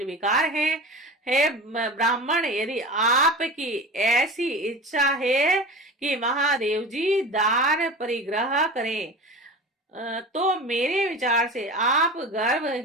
हैं। हे ब्राह्मण, यदि आपकी ऐसी इच्छा है कि महादेव जी दान परिग्रह करें, तो मेरे विचार से आप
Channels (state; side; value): normal; both; correlation 0.32